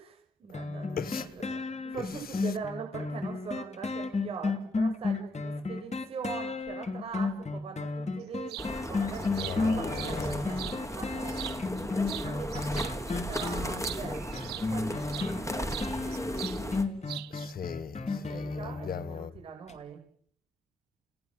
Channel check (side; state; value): both; normal; correlation 0.76